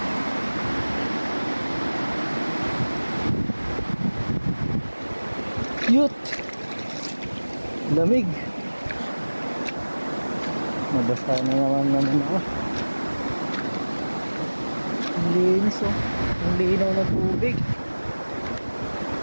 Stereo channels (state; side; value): inverted; both; correlation -1.00